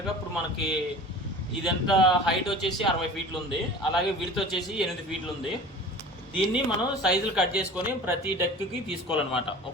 ఇప్పుడు మనకి ఇదంత హైట్ వచ్చేసి 60 ఫీట్లు ఉంది, అలాగే విడ్త్ వచ్చేసి 8 ఫీట్లు ఉంది. దీన్ని మనం సైజులు కట్ చేసుకొని ప్రతి డెక్కి తీసుకోవాలన్నమాట.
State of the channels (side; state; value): both; normal; correlation 0.39